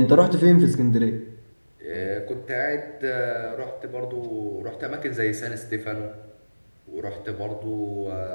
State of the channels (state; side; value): inverted; both; correlation -1.00